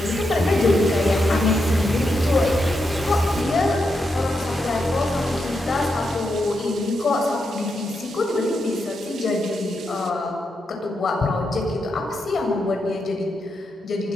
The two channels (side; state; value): both; normal; correlation 0.84